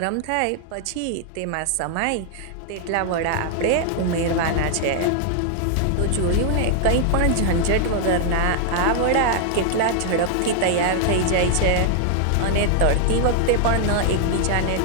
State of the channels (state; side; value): different; both; correlation 0.00